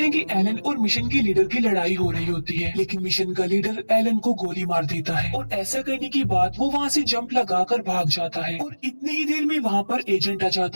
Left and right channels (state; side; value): inverted; both; correlation -1.00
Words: कि एलन और मिशन के लीडर की लड़ाई हो रही होती है, लेकिन मिशन का लीडर एलन को गोली मार देता है, और ऐसा करने के बाद वो वहाँ से जंप लगाकर भाग जाता है। और इतनी ही देर में वहाँ पर एजेंट आ